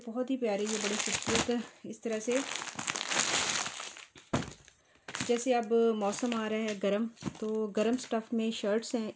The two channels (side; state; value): both; identical; correlation 1.00